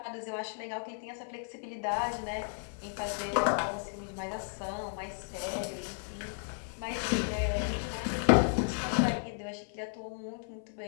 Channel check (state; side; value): silent; right; 55 dB below the other